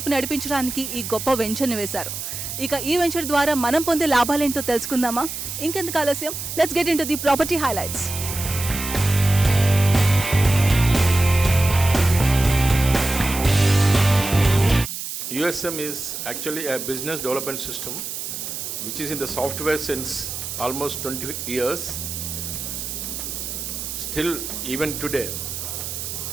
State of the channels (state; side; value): noise; right; hiss, 6 dB below the sound